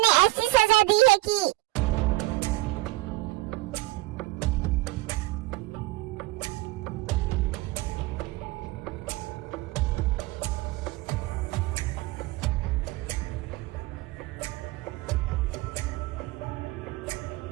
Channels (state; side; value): quieter; left; 20.2 dB